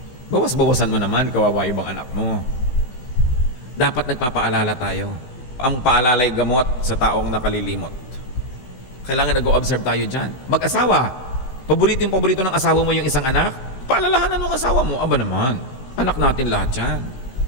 Bawas-bawasan mo naman, kawawa ibang anak mo. Dapat nagpapaalala tayo. Ang paalalay gamot sa taong nakalilimot. Kailangan nag-o-observe tayo dyan. Mag-asawa. Paborito ng asawa mo yung isang anak? Paalalahanan mo ang asawa mo. Aba naman, anak natin lahat yan.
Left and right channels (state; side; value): late; right; 16 ms